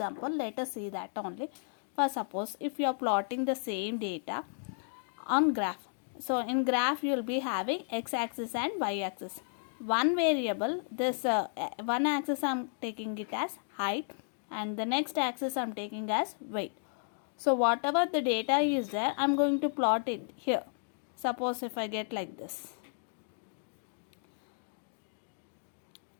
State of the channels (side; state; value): right; silent; digital silence